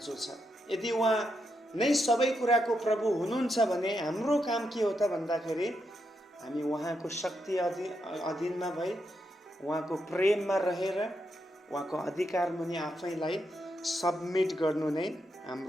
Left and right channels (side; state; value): both; normal; correlation 0.82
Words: छ। यदि उहाँ नै सबै कुराको प्रभु हुनुहुन्छ भने हाम्रो काम के हो त भन्दाखेरि, हामी उहाँको शक्ति अधीनमा भई, उहाँको प्रेममा रहेर, उहाँको अधिकार मुनि आफैलाई सबमिट गर्नु नै